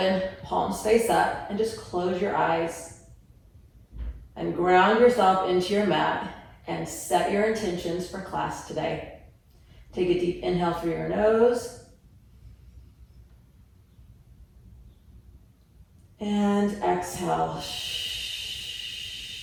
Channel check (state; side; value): identical; both; correlation 1.00